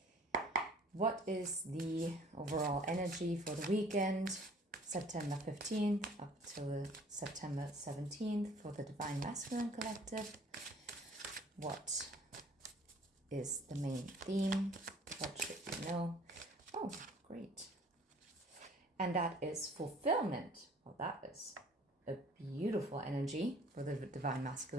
What is the overall energy for the weekend, September 15th up till September 17th for the Divine Masculine Collective? What is the main theme? What should you know? Oh, great. And that is fulfillment. Well, that is a beautiful energy for the Divine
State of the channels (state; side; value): normal; both; correlation 0.53